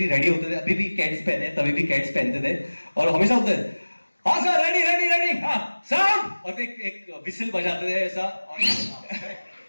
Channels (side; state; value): both; inverted; correlation -1.00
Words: रेडी होते थे, अभी भी कैट्स पहने, तभी भी कैट्स पहनते थे, और हमेशा होते थे, हाँ सर रेडी रेडी रेडी, हाँ साउंड, और एक विसल बजाते थे ऐसा,